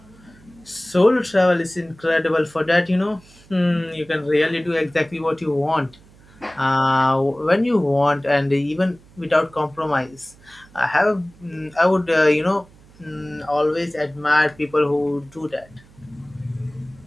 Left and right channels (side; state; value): right; noise; hum, 26 dB below the sound